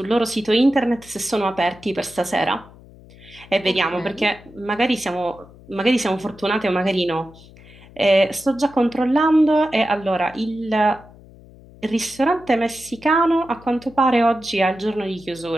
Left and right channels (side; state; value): left; noise; hum, 22 dB below the sound